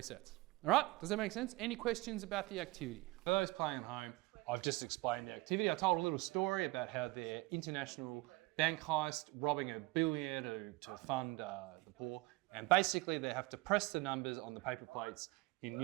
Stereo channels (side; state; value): left; quieter; 22.0 dB